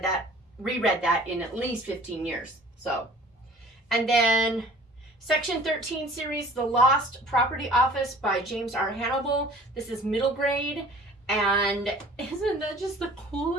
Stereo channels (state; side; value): normal; both; correlation 0.47